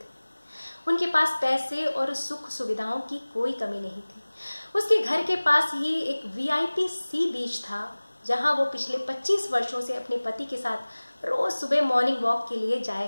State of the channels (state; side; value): inverted; both; correlation -1.00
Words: उनके पास पैसे और सुख सुविधाओं की कोई कमी नहीं थी। उसके घर के पास ही एक वीआईपी सी बीच था, जहां वो पिछले 25 वर्षों से अपने पति के साथ रोज सुबह मॉर्निंग वॉक के लिए जाया